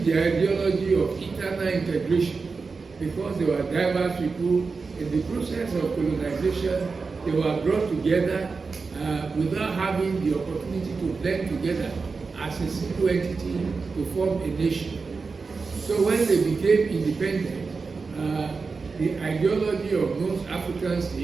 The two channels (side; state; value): left; quieter; 4.5 dB